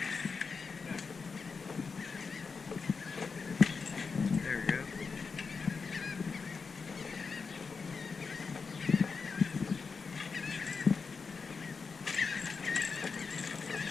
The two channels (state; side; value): quieter; right; 5.0 dB